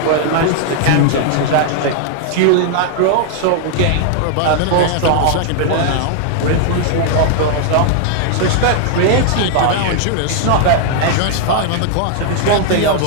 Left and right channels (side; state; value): both; different; correlation 0.00